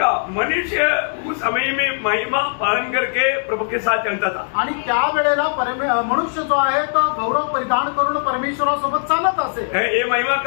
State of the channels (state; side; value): silent; right; digital silence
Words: मनुष्य उस समय में महिमा पालन करके प्रभु के साथ चलता था. आणि त्या वेळेला मनुष्य जो आहे तो गौरव परिधान करून परमेश्वरासोबत चालत असे. ये महिमा